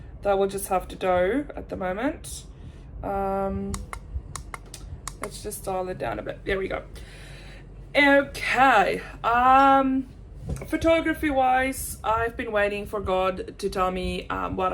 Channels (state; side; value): identical; both; correlation 1.00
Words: that will just have to do at the moment. Let's just dial it down a bit. There we go. Okay. Photography wise, I've been waiting for God to tell me what